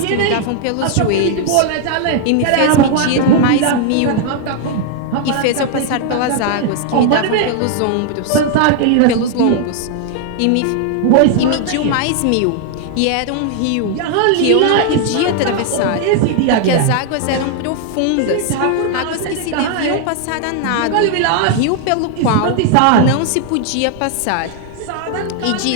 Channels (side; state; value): both; different; correlation 0.00